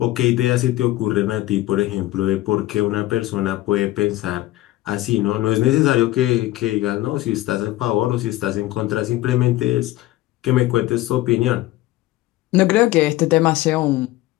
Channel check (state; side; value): quieter; right; 16.5 dB